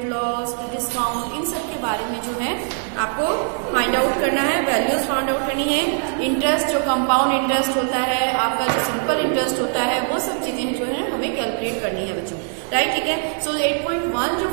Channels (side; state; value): left; silent; 56 dB below the other